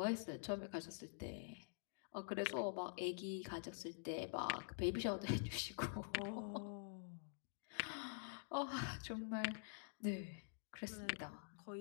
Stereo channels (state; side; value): silent; right; digital silence